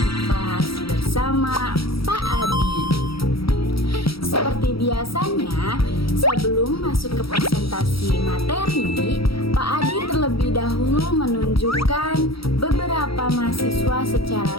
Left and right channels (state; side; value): late; right; 0.75 ms